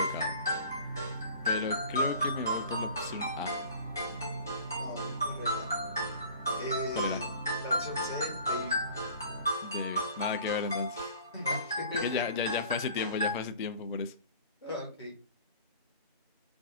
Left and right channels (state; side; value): inverted; both; correlation -0.45